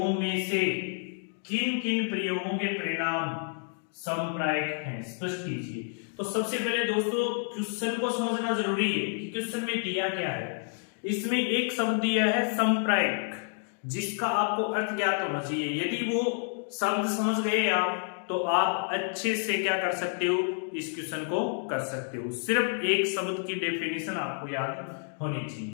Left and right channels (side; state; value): right; silent; 58 dB below the other